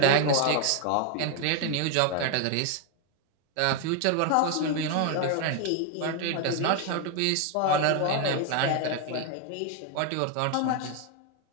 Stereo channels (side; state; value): both; different; correlation 0.01